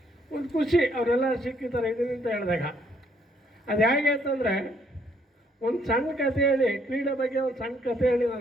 ಒಂದು ಖುಷಿ ಅವರೆಲ್ಲ ಸಿಕ್ಕಿದ್ದಾರೆ ಇದೀನಿ ಅಂತ ಹೇಳಿದಾಗ. ಅದು ಹೇಗೆ ಅಂತಂದರೆ, ಒಂದು ಸಣ್ಣ ಕಥೆ ಹೇಳಿ, ಕ್ರೀಡೆ ಬಗ್ಗೆ ಒಂದು ಸಣ್ಣ ಕಥೆ ಹೇಳಿ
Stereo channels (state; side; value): normal; both; correlation 0.68